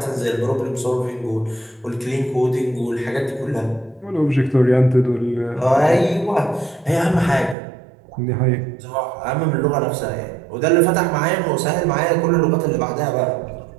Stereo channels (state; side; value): drops out; left; at 7.6 s